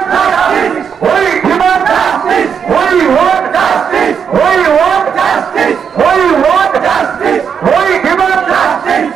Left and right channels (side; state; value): left; quieter; 7.1 dB